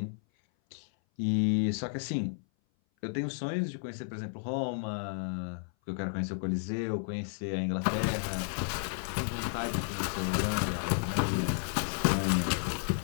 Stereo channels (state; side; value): silent; right; 56 dB below the other